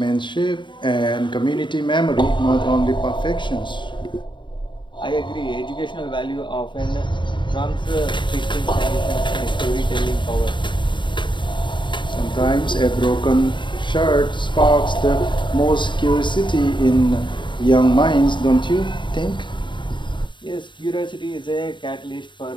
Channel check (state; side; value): late; right; 0.23 ms